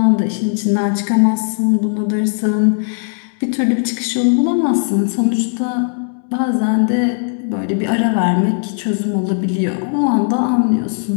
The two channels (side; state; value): right; silent; 68 dB below the other